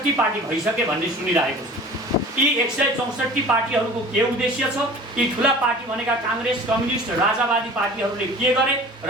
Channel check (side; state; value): both; normal; correlation 0.43